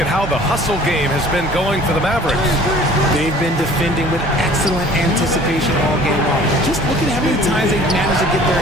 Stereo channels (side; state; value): both; normal; correlation 0.49